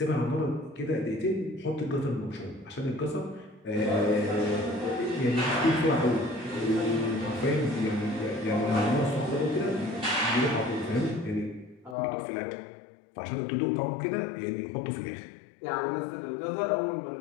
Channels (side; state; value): right; drops out; at 12.0 s